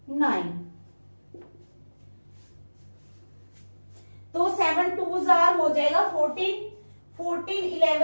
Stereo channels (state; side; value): inverted; both; correlation -1.00